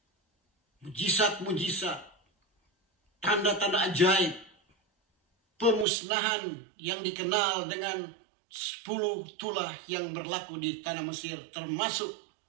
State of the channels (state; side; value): drops out; left; at 5.9 s